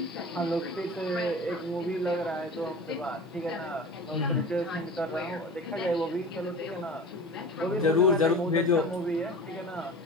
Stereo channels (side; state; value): both; normal; correlation 0.36